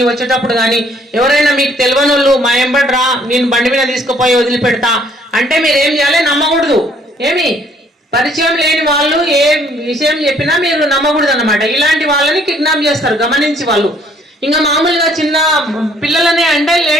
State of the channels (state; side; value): normal; both; correlation 0.62